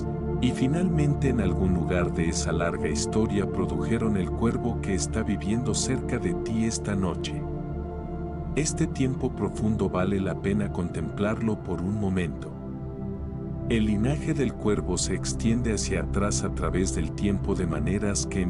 y finalmente en algún lugar de esa larga historia produjeron el cuervo que está viviendo cerca de ti esta noche. Este tiempo profundo vale la pena contemplarlo por un momento. El linaje del cuervo se extiende hacia atrás a través del tiempo de maneras que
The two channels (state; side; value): identical; both; correlation 1.00